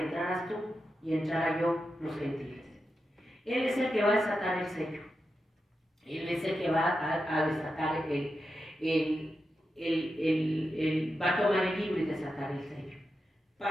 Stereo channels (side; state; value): both; normal; correlation 0.89